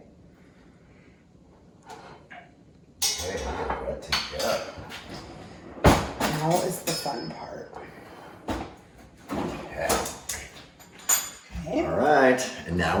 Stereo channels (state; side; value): identical; both; correlation 1.00